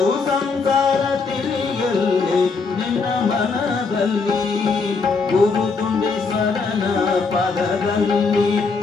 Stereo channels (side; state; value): right; quieter; 4.5 dB